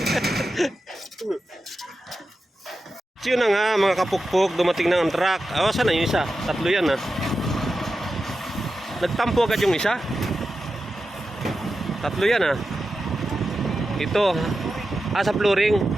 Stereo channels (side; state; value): both; normal; correlation 0.91